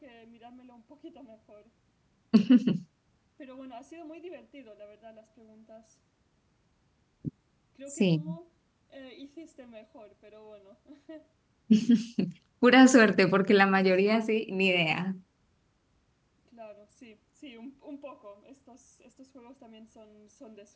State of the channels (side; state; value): both; identical; correlation 1.00